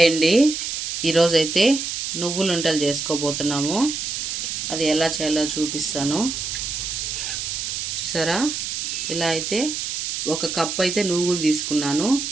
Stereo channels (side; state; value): right; noise; hiss, 4 dB below the sound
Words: అండి. ఈరోజైతే నువ్వులు ఉండలు చేసుకోబోతున్నాము. అది ఎలా చేయాలో చూపిస్తాను. చూసారా, ఇలా అయితే ఒక కప్పు అయితే నువ్వులు తీసుకున్నాను.